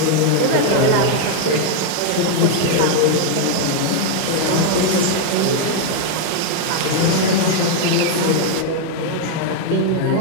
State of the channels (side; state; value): both; different; correlation 0.00